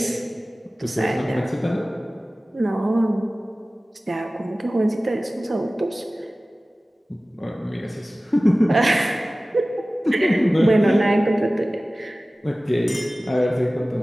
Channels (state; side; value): normal; both; correlation 0.97